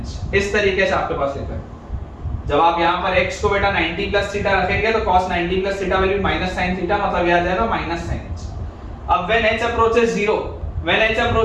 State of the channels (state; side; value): identical; both; correlation 1.00